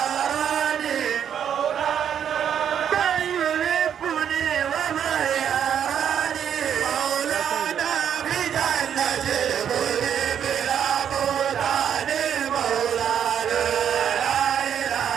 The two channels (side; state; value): left; quieter; 8.8 dB